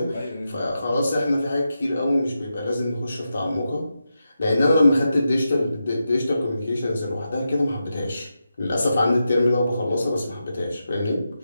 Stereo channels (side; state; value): both; inverted; correlation -0.88